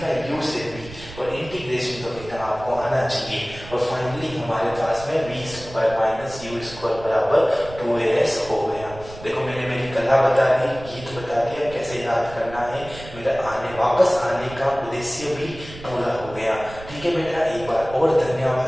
का u से v, और इंटीग्रेशन तो बेटा आपको आना चाहिए। और फाइनली हमारे पास में v square minus u square बराबर 2as हो गया। देखो मैंने मेरी कला बता दी, गीत बता दिया, कैसे याद करना है, मेरा वापस आने का उद्देश्य भी पूरा हो गया। ठीक है बेटा, एक बार और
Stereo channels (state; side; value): noise; right; rumble, 15 dB below the sound